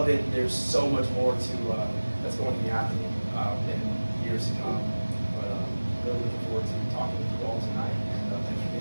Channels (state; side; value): inverted; both; correlation -1.00